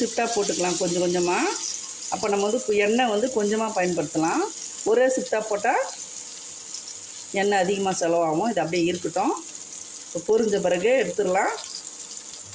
போட்டுக்கலாம் கொஞ்சம் கொஞ்சமாக. அப்போ நம்ம எண்ணெய் கொஞ்சமாக பயன்படுத்தலாம். ஒரே ஷிஃப்டாக போட்டால் எண்ணெய் அதிகமாக செலவாகும். இது அப்படியே இருக்கட்டும். இப்போ பொரிஞ்ச பிறகு எடுத்துடலாம்.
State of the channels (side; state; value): both; identical; correlation 1.00